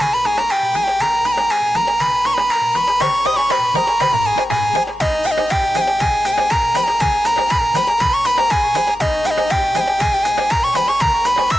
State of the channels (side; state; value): both; normal; correlation 0.92